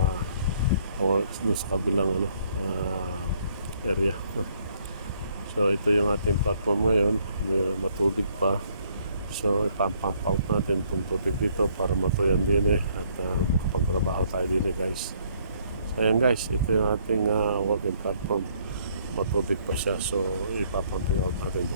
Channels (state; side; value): inverted; both; correlation -0.66